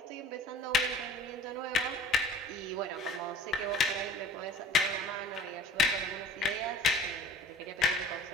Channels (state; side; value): normal; both; correlation 0.45